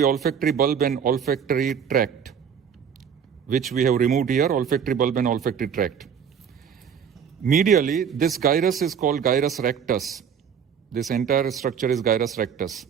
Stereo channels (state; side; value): quieter; left; 7.5 dB